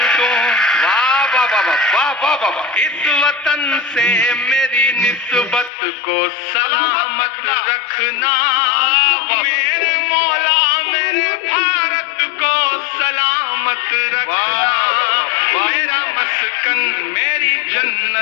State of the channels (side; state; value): right; drops out; at 5.7 s